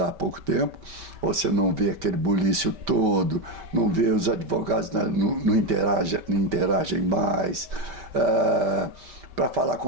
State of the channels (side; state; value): left; late; 5.1 ms